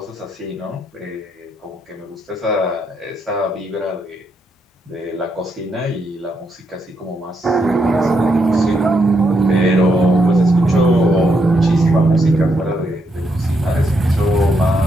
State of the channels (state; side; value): normal; both; correlation 0.79